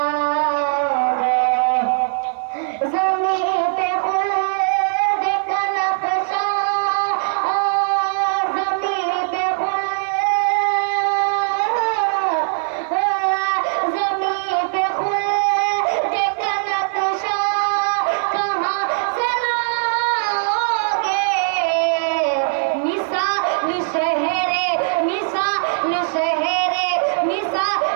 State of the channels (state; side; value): silent; left; 56 dB below the other